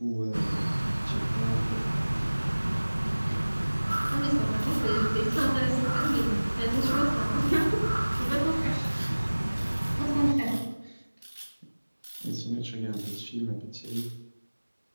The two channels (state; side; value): inverted; both; correlation -1.00